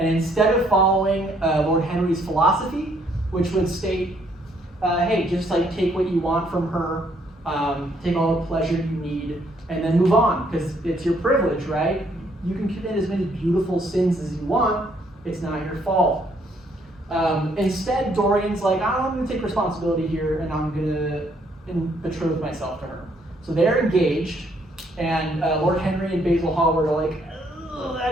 instead of following Lord Henry's philosophy, which would state, hey, just like take what you want from her, take all the pleasure you need, and then move on, because it's your privilege, right? You can commit as many beautiful sins as you want. It's not your fault. Instead, Dorian's like, I'm going to take responsibility here, and I'm going to betroth myself to her. So they're engaged, and Lord Henry and Basil Hallward are like, I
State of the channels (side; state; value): both; normal; correlation 0.68